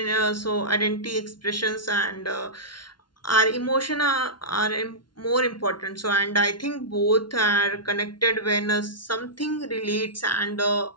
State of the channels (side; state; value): right; late; 0.71 ms